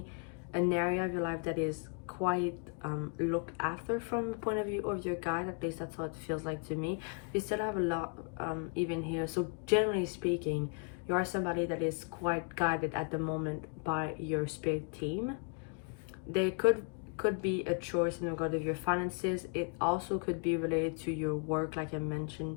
an area of your life that is quite looked after from the point of view of your guide. At least that's how it feels like to me. You still have a lot even here. So generally speaking, you are somebody that is quite guided at the moment by your spirit team. There could be a choice in regard of your finances. It also could be related to your work, like I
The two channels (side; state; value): right; quieter; 36.6 dB